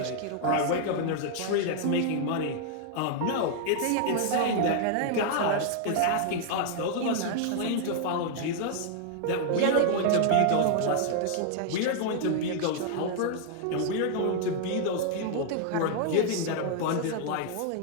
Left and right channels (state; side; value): different; both; correlation 0.00